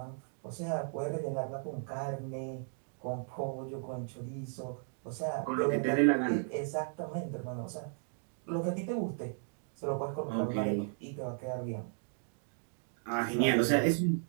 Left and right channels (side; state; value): left; silent; 54 dB below the other